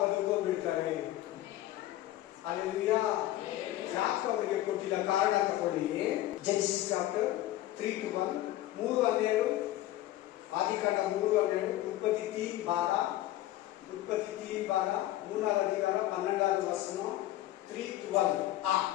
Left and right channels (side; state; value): right; quieter; 14.8 dB